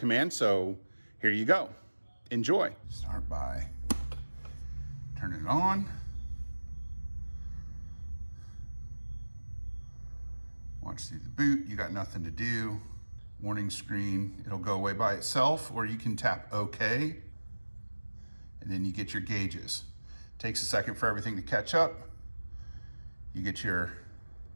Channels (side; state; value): both; inverted; correlation -1.00